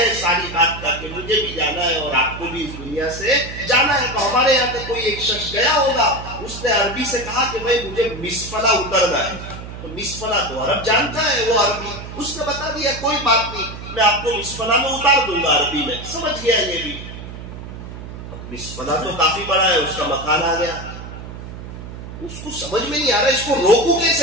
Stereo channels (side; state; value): right; noise; hum, 11 dB below the sound